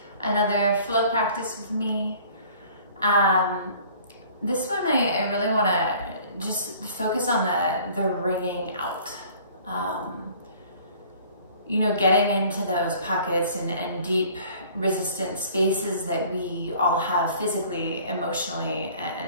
another flow practice with me. This one I really want to just focus on the ringing out. Getting into those pockets and deep resistant spaces that we all have physically, emotionally,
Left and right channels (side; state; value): both; inverted; correlation -0.51